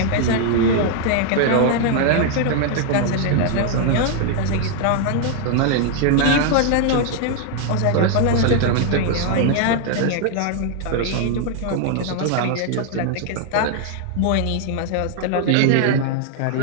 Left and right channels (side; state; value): both; different; correlation 0.00